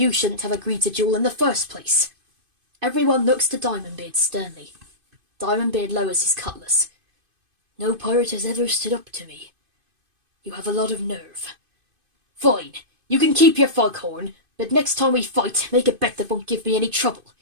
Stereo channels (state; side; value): late; left; 2.5 ms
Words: shouldn't have agreed to duel in the first place. Everyone looks to DiamondBeard sternly. DiamondBeard lowers his cutlass. No pirate has ever stood up to me. You have a lot of nerve. Fine, you can keep your foghorn, but next time we fight, make a bet that won't give me any trouble.